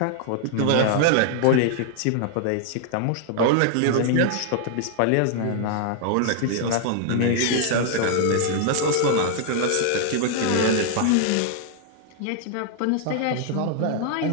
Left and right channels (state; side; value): different; both; correlation 0.00